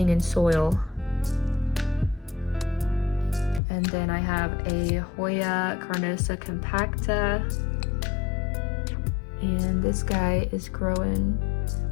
in soil. And then I have a Hoya Carnosa compacta. And this guy is growing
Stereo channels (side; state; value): right; drops out; at 3.6 s